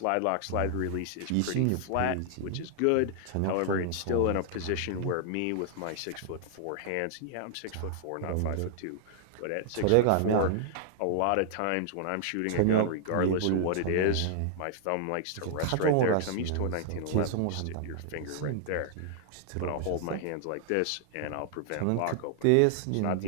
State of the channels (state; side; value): different; both; correlation -0.01